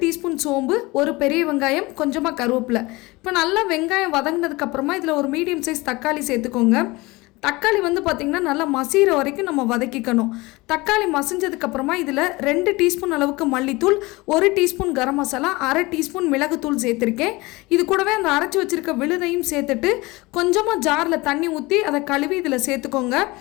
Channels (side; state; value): right; quieter; 22.5 dB